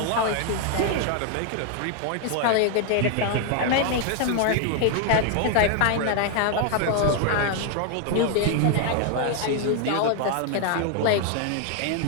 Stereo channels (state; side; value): different; both; correlation 0.00